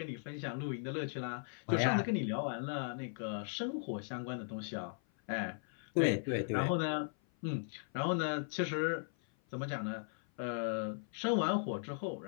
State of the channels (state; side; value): silent; right; 53 dB below the other